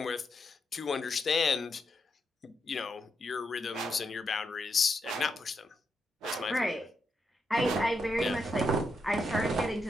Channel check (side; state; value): both; normal; correlation 0.82